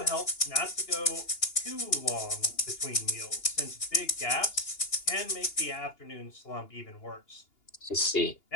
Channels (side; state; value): right; late; 2.8 ms